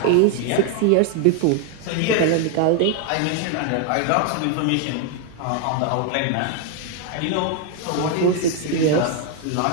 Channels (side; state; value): both; different; correlation 0.00